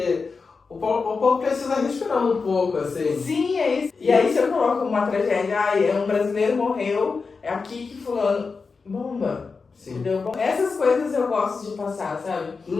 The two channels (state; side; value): quieter; right; 4.7 dB